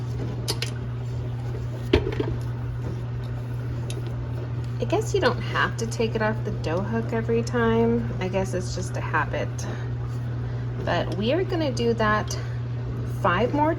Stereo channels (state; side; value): identical; both; correlation 1.00